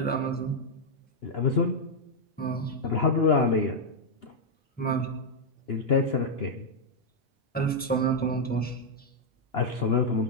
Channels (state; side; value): normal; both; correlation -0.03